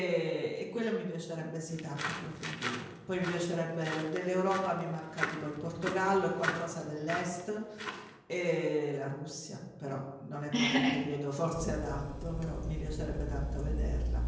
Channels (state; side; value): identical; both; correlation 1.00